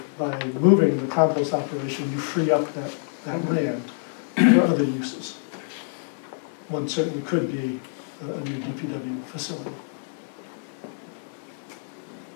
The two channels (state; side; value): silent; right; digital silence